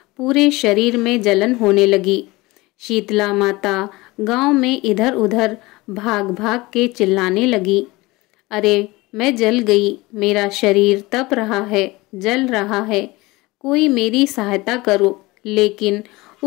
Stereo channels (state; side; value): quieter; right; 21.7 dB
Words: पूरे शरीर में जलन होने लगी। शीतला माता गांव में इधर उधर भाग भाग के चिल्लाने लगी, अरे मैं जल गई, मेरा शरीर तप रहा है, जल रहा है, कोई मेरी सहायता करो। लेकिन